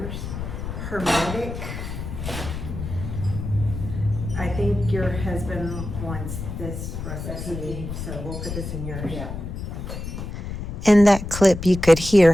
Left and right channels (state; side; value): noise; left; rumble, 7 dB below the sound